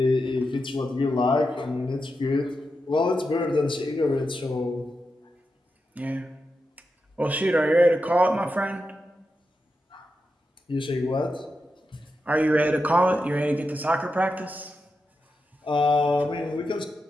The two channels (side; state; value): both; normal; correlation 0.88